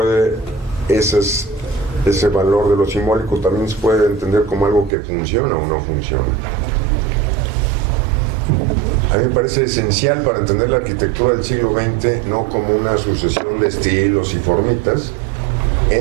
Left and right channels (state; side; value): drops out; left; at 4.9 s